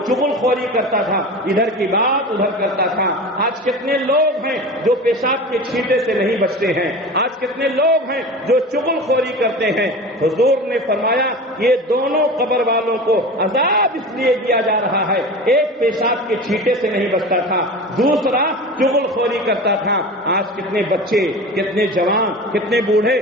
چغل خوری کرتا تھا، ادھر کی بات ادھر کرتا تھا۔ آج کتنے لوگ ہیں جو پیشاب کے چھینٹے سے نہیں بچتے ہیں، آج کتنے لوگ ہیں جو چغل خوری کرتے ہیں۔ حضور نے فرمایا یہ دونوں قبر والوں کو عذاب اس لیے دیا جا رہا ہے، ایک پیشاب کے چھینٹے سے نہیں بچتا تھا، دوسرا چغل خوری کرتا تھا۔ آج کتنے بچے، کتنے جوان، کتنے بوڑھے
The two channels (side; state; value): both; normal; correlation 0.32